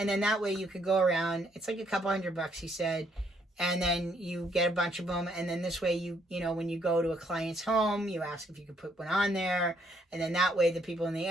then that way you could go around. It's like a couple $100, he said, and then you get a bunch of them, and then this way you know when you go to a client's home, you ask if you could put one on there, and then that way the people in the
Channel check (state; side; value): normal; both; correlation 0.70